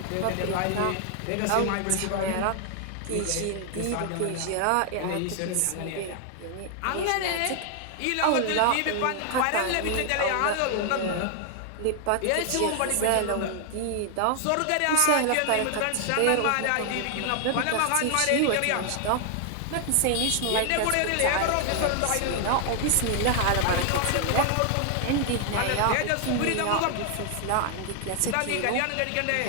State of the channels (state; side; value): different; both; correlation 0.00